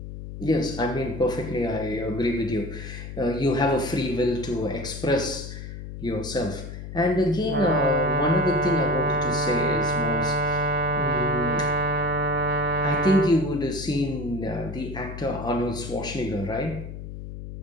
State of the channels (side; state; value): left; noise; hum, 10 dB below the sound